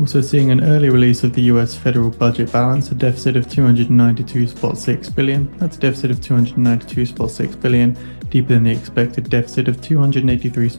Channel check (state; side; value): inverted; both; correlation -1.00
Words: seeing an early release of the US federal budget balance, a deficit of 292.6 billion. That's a deficit of 292.6 billion, deeper than the expected deficit of